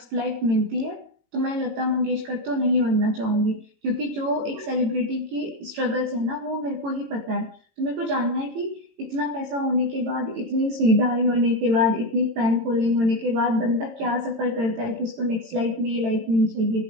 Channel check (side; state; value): left; late; 18 ms